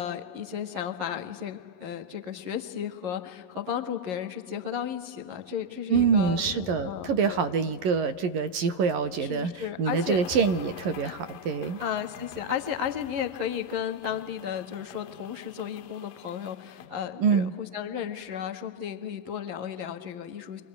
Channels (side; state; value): left; late; 11 ms